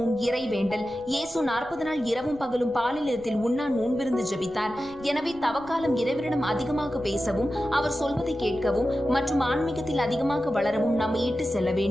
இறைவேண்டல். இயேசு 40 நாள் இரவும் பகலும் பாலிலத்தில் உண்ணா நோன்பிருந்து ஜெபித்தார். எனவே தவக்காலம் இறைவனிடம் அதிகமாக பேசவும், அவர் சொல்வதை கேட்கவும் மற்றும் ஆன்மீகத்தில் அதிகமாக வளரவும் நம்மை இட்டு செல்ல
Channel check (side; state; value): left; noise; rumble, 22 dB below the sound